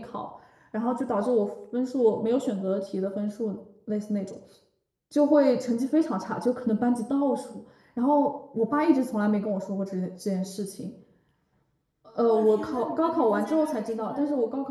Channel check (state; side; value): identical; both; correlation 1.00